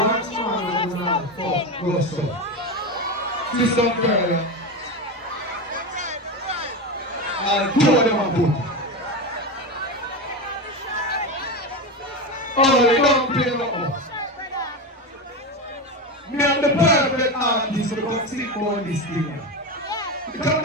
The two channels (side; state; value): both; normal; correlation 0.18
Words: man to now fuck, go so. See some girl, I'll two of them and put. Oh, they don't play no more. Me am the perfect artist to come sing on this thing. Because I